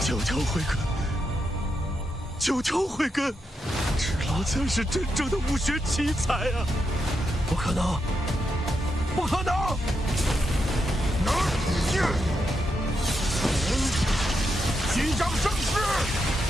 求求慧根，求求慧根，芷劳才是真正的武学奇才啊！不可能，不可能！击掌生势！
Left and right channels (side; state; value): both; normal; correlation 0.83